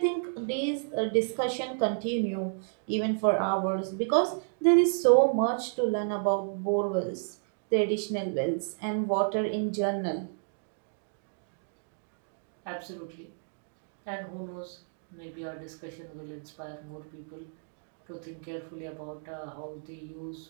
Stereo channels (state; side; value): silent; left; digital silence